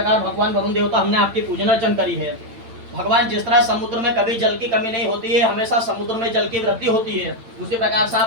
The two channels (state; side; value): late; left; 8.9 ms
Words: भगवान वरुण देवता हमने आपकी पूजन अर्चन करी है। भगवान जिस तरह समुद्र में कभी जल की कमी नहीं होती है, हमेशा समुद्र में जल की वृद्धि होती है, उसी प्रकार से